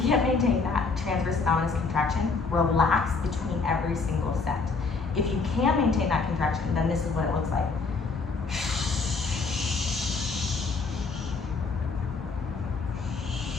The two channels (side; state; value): right; quieter; 4.4 dB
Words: can't maintain that transverse abdominis contraction, relax between every single set. If you can maintain that contraction, then this is what it looks like.